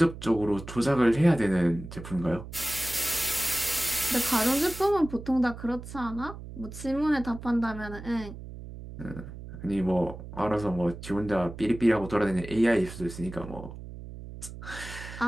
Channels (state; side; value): noise; right; hum, 12 dB below the sound